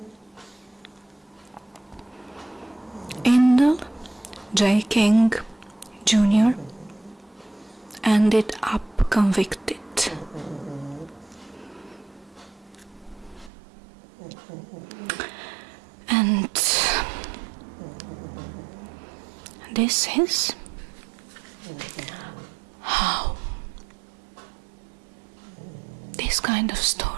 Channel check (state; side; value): drops out; left; at 13.5 s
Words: Indel J. King Jr. ended up convicted. And this is how this kind of